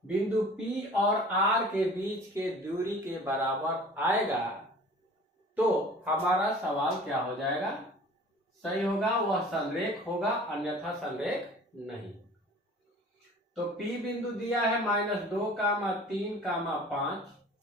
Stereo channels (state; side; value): normal; both; correlation 0.46